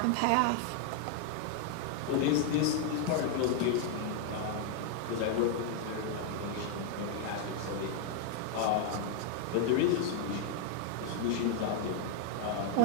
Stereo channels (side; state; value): both; different; correlation 0.00